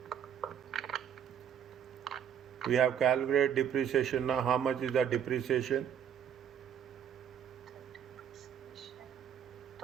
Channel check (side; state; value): left; quieter; 8.8 dB